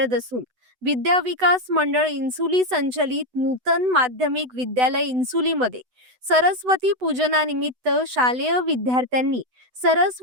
असून विद्या विकास मंडळ इन्सुली संचलित नूतन माध्यमिक विद्यालय इन्सुलीमध्ये सरस्वती पूजनानिमित्त शालेय विद्यार्थ्यांनी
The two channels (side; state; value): left; late; 8.0 ms